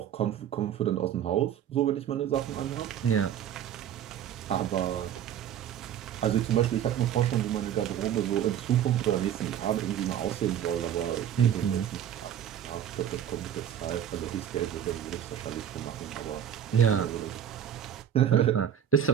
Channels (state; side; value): quieter; left; 9.8 dB